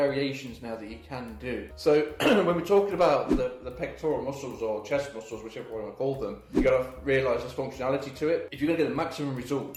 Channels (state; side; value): identical; both; correlation 1.00